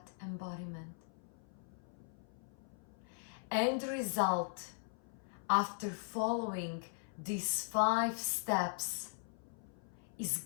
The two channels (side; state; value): right; silent; 51 dB below the other